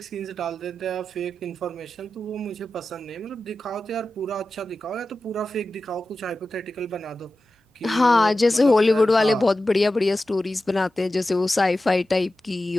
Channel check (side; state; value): both; normal; correlation 0.93